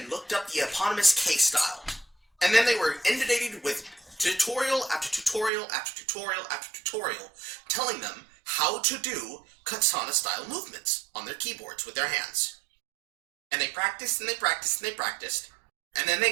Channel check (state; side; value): drops out; left; at 5.5 s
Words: looked up the eponymous K-style. And then they were inundated with tutorial after tutorial after tutorial after tutorial telling them how to do katana-style movements on their keyboards with their hands. And they practiced and they practiced and they practiced, and then they